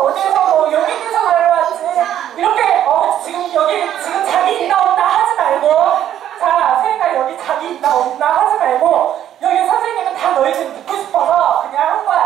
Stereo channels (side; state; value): left; quieter; 11.0 dB